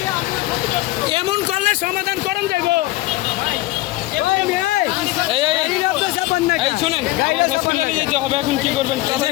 এমন করলে সমাধান করেন যাইব। এই শুনেন, আমার হসপিটালে যেতে হবে, এখন কি করবেন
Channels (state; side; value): quieter; right; 18.3 dB